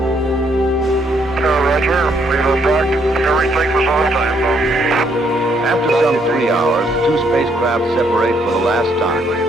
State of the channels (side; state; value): both; normal; correlation 0.71